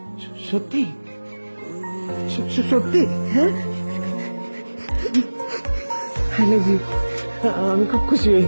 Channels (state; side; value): inverted; both; correlation -1.00